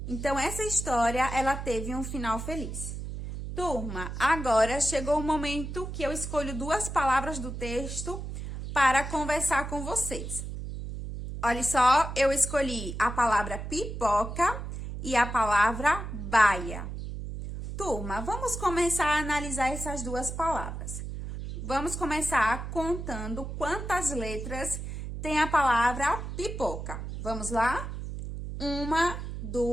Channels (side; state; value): right; noise; hum, 7 dB below the sound